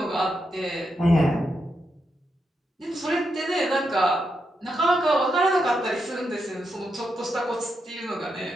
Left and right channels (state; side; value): normal; both; correlation 0.83